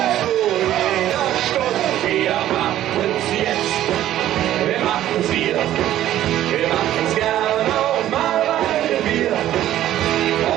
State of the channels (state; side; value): quieter; left; 12.8 dB